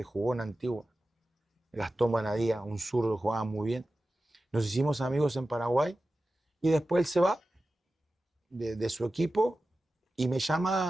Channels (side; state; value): both; normal; correlation 0.94